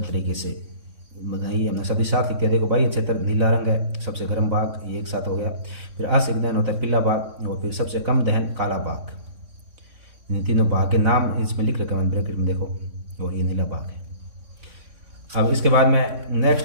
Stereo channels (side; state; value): left; late; 3.6 ms